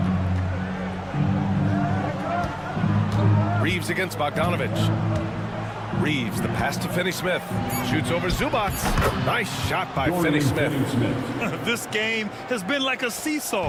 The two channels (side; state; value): both; identical; correlation 1.00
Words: Reeves against Bogdanovich. Reeves, the pass to Finney Smith. Shoots over Zubac. Nice shot by Finney Smith. This game has been like a